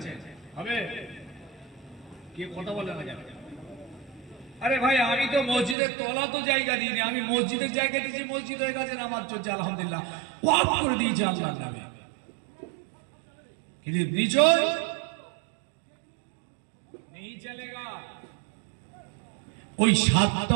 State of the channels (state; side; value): drops out; left; at 5.8 s